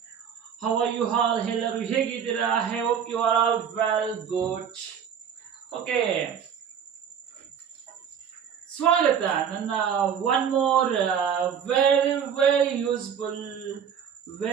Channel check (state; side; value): quieter; left; 7.9 dB